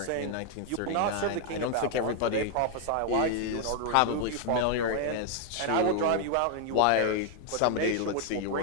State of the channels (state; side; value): different; both; correlation 0.00